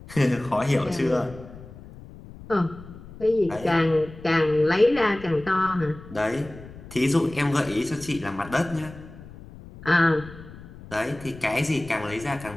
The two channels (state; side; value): noise; left; rumble, 17 dB below the sound